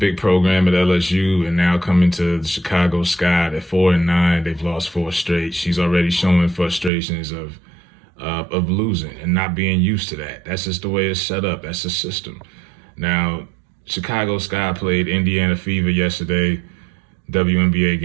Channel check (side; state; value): left; drops out; at 6.9 s